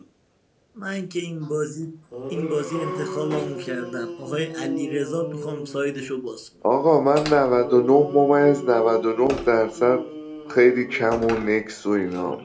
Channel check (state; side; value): identical; both; correlation 1.00